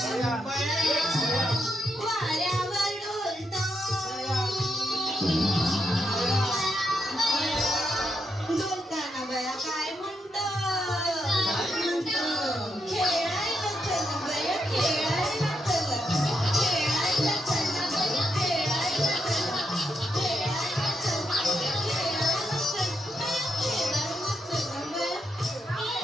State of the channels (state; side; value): normal; both; correlation 0.81